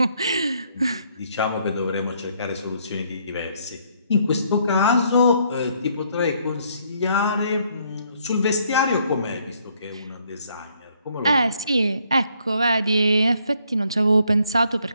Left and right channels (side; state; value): both; inverted; correlation -0.69